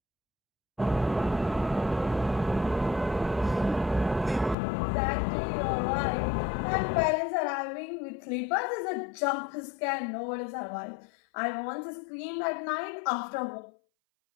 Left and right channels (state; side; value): drops out; right; at 4.5 s